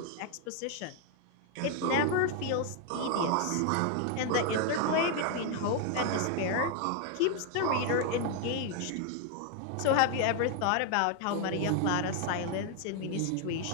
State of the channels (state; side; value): different; both; correlation 0.00